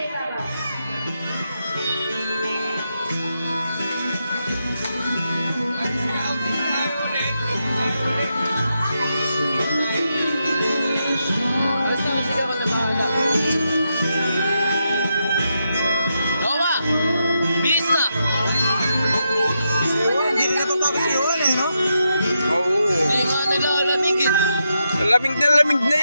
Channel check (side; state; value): both; inverted; correlation -0.84